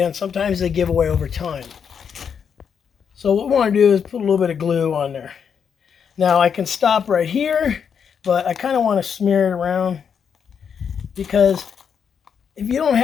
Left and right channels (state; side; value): quieter; right; 7.1 dB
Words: sometimes they give away over time. So what we want to do is put a little bit of glue on there. Now I can stop right here, but I kind of want to smear it around, because if you don't